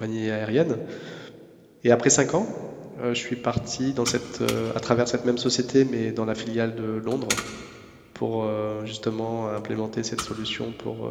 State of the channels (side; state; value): both; identical; correlation 1.00